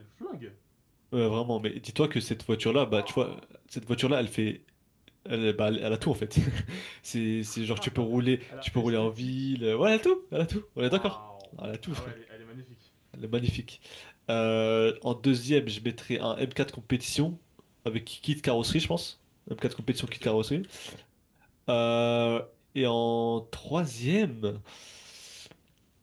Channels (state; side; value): identical; both; correlation 1.00